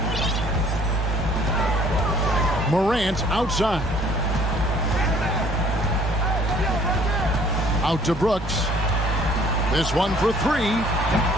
Morant outside. Out to Brooks. This one for three.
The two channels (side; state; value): both; normal; correlation 0.57